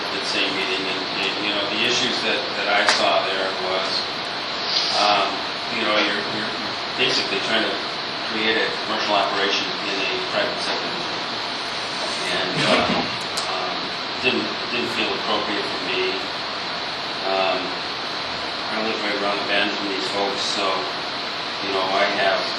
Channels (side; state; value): both; identical; correlation 1.00